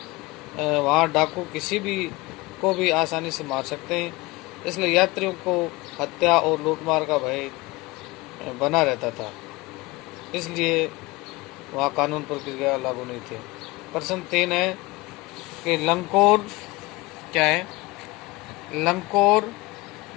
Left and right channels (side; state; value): right; quieter; 22.4 dB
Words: वहाँ डाकू किसी भी को भी आसानी से मार सकते हैं, इसलिए यात्रियों को हत्या और लूटमार का भय बना रहता था। इसलिए वहाँ कानून प्रक्रिया लागू नहीं थी। प्रश्न 3 है कि लंकोर क्या है? लंकोर,